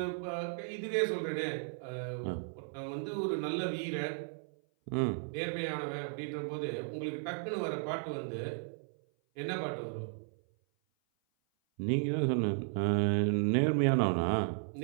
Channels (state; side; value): silent; left; 55 dB below the other